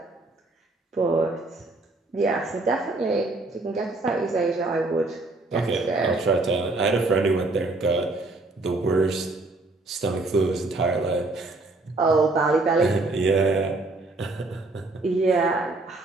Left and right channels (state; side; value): quieter; left; 3.1 dB